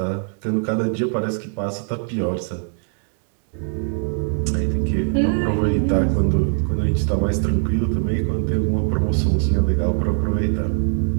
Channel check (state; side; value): silent; left; 56 dB below the other